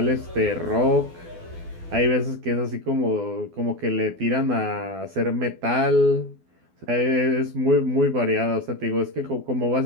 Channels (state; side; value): late; left; 12 ms